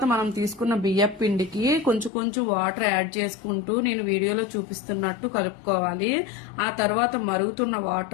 మనం తీసుకున్న బియ్యం పిండికి కొంచెం కొంచెం వాటర్ యాడ్ చేసుకుంటూ నేను వీడియోలో చూపిస్తున్నట్టు కలుపుకోవాలి. ఆ తర్వాత మరుగుతున్న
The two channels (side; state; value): right; drops out; at 2.1 s